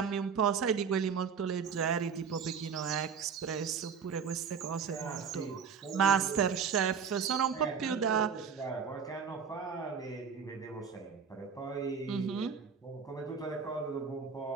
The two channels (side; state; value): left; quieter; 6.5 dB